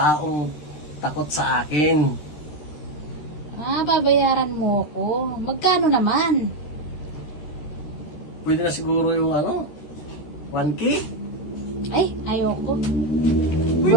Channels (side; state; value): right; late; 13 ms